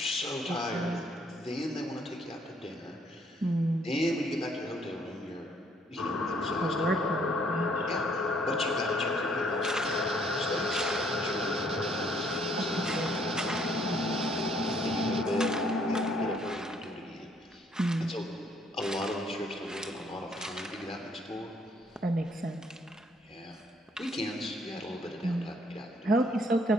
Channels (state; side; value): normal; both; correlation 0.65